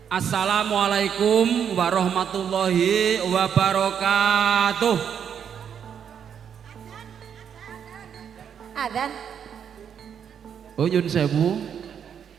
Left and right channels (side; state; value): left; quieter; 8.1 dB